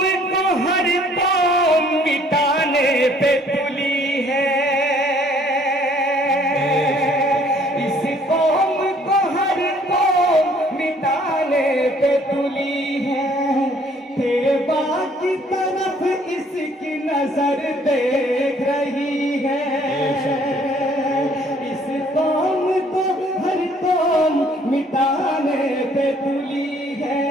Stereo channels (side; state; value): both; normal; correlation 0.60